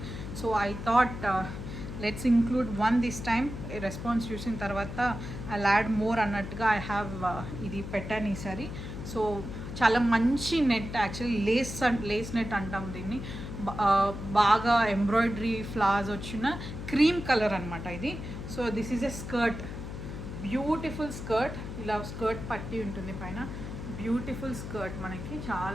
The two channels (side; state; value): left; noise; hum, 8 dB below the sound